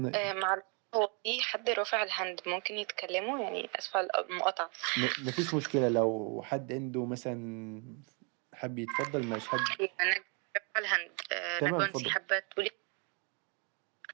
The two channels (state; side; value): quieter; left; 35.6 dB